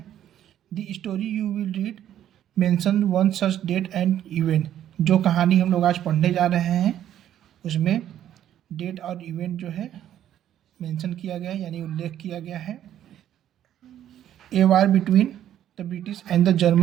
The story you will read mention one such date and event. जो कहानी हम लोग आज पढ़ने जा रहे हैं उसमें डेट और इवेंट जो है मेंशन किया गया है, यानी उल्लेख किया गया है। A war between the British and the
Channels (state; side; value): quieter; left; 11.2 dB